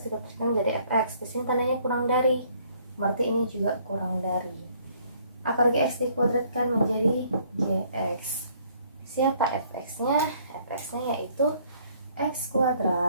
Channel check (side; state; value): both; inverted; correlation -0.62